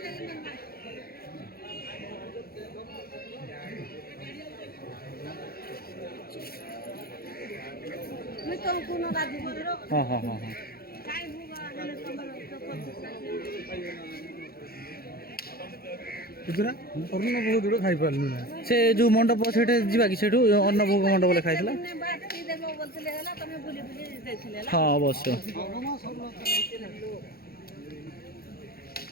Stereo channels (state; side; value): late; right; 0.44 ms